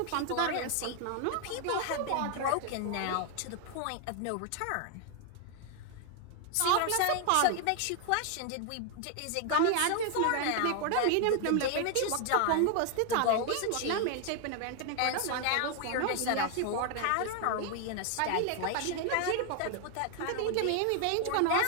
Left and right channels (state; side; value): different; both; correlation 0.00